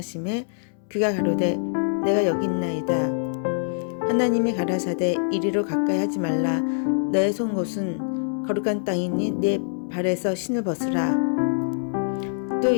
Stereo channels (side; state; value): right; silent; 62 dB below the other